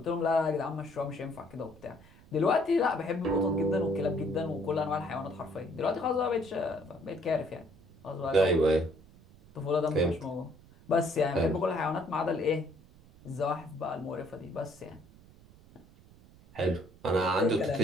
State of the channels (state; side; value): noise; right; rumble, 24 dB below the sound